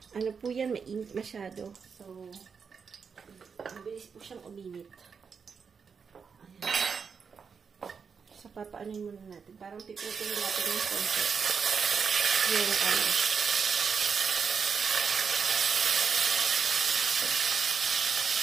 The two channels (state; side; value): quieter; left; 6.0 dB